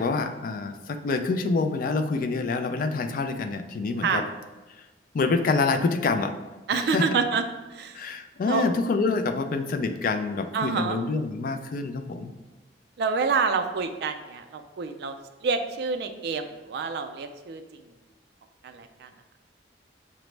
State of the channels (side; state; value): both; normal; correlation 0.25